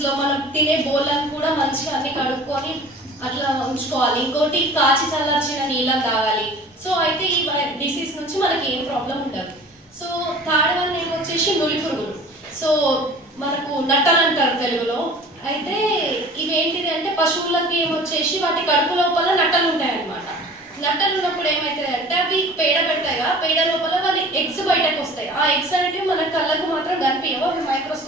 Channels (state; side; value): normal; both; correlation 0.44